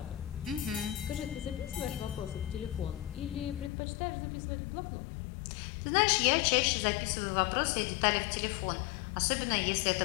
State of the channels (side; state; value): right; drops out; at 3.7 s